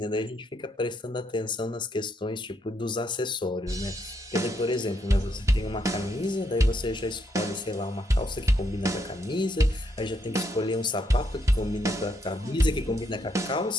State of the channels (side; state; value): both; normal; correlation 0.75